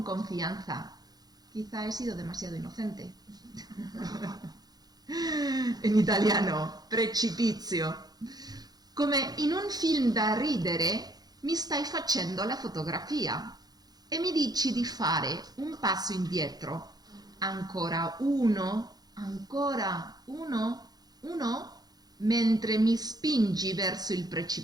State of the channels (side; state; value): left; late; 0.19 ms